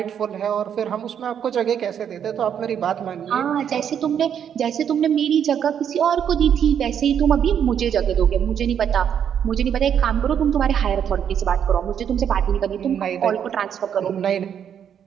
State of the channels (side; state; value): left; quieter; 8.6 dB